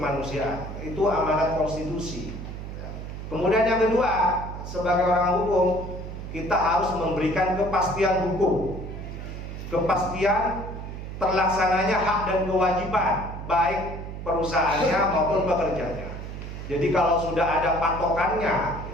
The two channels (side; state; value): right; noise; hum, 9 dB below the sound